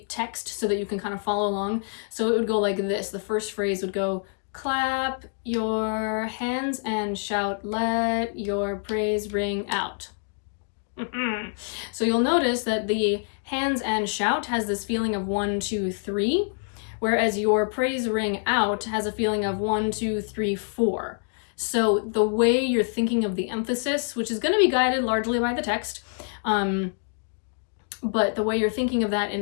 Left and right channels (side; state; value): right; silent; 61 dB below the other